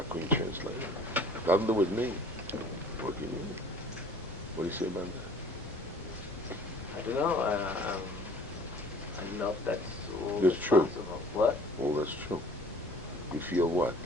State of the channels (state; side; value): normal; both; correlation 0.51